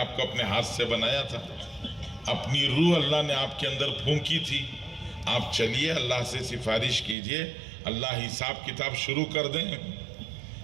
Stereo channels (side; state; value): left; drops out; at 7.2 s